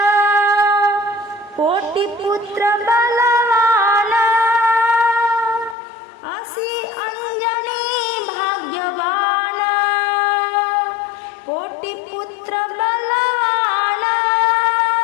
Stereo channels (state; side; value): drops out; right; at 5.8 s